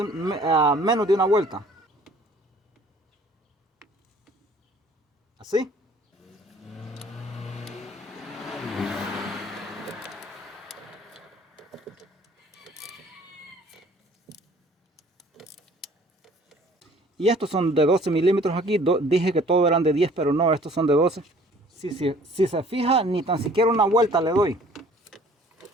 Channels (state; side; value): normal; both; correlation 0.53